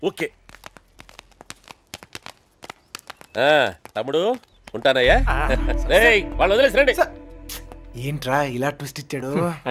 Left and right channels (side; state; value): both; identical; correlation 1.00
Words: ఓకే తమ్ముడు ఉంటానయ్యా. రేయ్, వాళ్ళు వదిలేసి రండి. ఏంట్రా ఇలా ట్విస్ట్ ఇచ్చాడు?